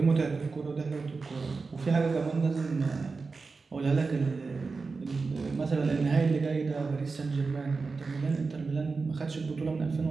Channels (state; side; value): quieter; left; 4.3 dB